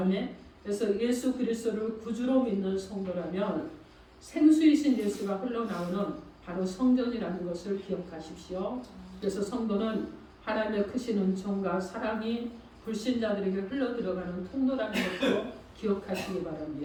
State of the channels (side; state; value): both; identical; correlation 1.00